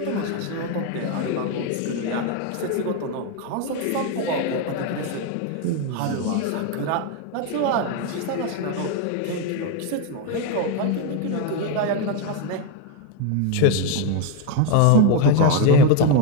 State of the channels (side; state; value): both; different; correlation 0.02